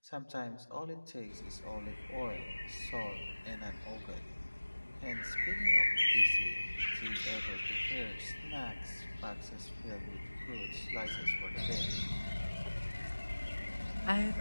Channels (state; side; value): inverted; both; correlation -1.00